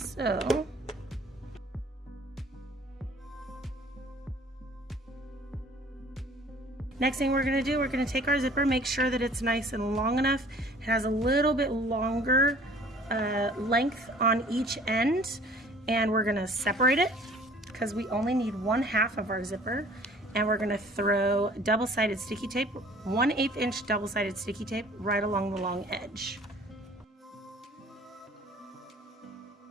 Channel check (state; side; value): normal; both; correlation 0.51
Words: next thing we're gonna do, we're gonna take our zipper, make sure that it's nice and long enough. It has a little bit longer length on each end, and we're gonna separate it because we only need 1/2 of our zipper, and we're gonna throw double-sided sticky tape, 1/8 inch double-sided sticky tape right along the long edge.